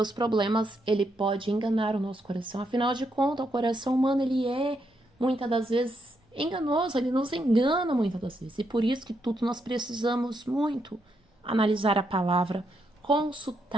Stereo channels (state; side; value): normal; both; correlation 0.79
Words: problemas, ele pode enganar o nosso coração. Afinal de contas, o coração humano, ele é, muitas das vezes, enganoso. Ele nos engana muitas das vezes. E por isso que tudo nós precisamos muito analisar a palavra,